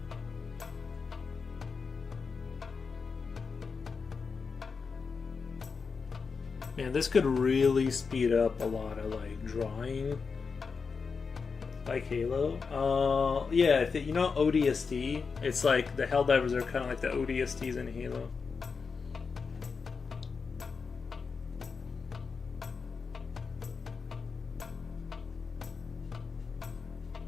Man, this could really speed up a lot of like drawing. Like Halo? Yeah, you know ODST? It's like the Helldivers are kind of like the ODSTs in Halo.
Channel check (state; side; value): quieter; right; 5.2 dB